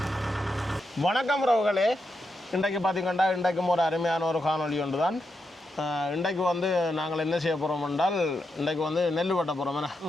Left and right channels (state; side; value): normal; both; correlation 0.85